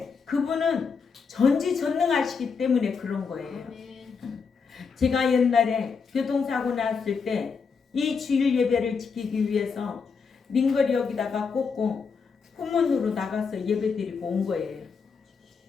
그분은 전지전능하시기 때문에 그런 거예요. 제가 옛날에 교통사고 났을 때 이 주일 예배를 지키기 위해서 링거리 여기다가 꽂고 후문으로 나가서 예배 드리고 온 거예요.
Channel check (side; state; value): right; quieter; 5.5 dB